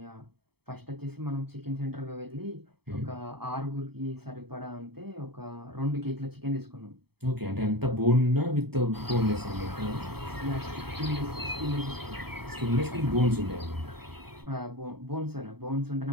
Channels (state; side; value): late; left; 0.97 ms